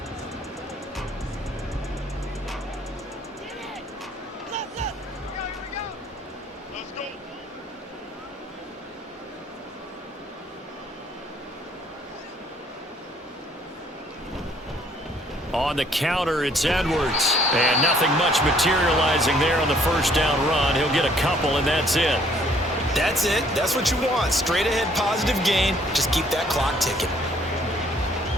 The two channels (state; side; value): normal; both; correlation 0.62